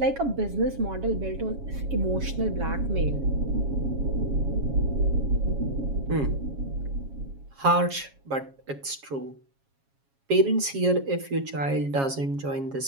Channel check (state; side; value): late; left; 7.3 ms